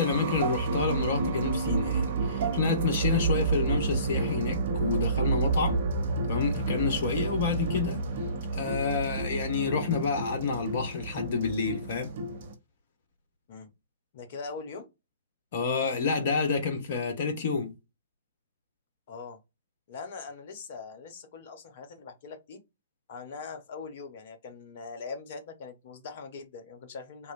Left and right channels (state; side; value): inverted; both; correlation -0.50